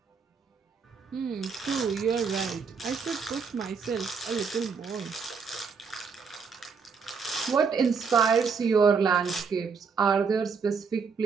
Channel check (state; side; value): quieter; left; 5.5 dB